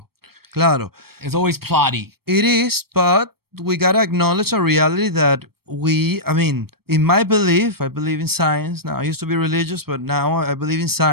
Claro. It's always plotty. It is, but we gotta acknowledge a reality that in my belief, I believe in science. Now, I used to be religious, but now I believe in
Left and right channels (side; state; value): left; late; 0.95 ms